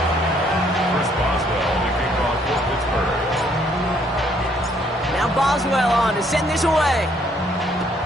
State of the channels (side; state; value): both; normal; correlation 0.66